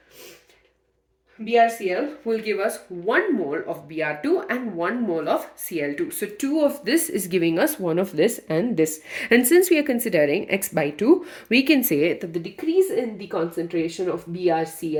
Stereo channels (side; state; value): both; identical; correlation 1.00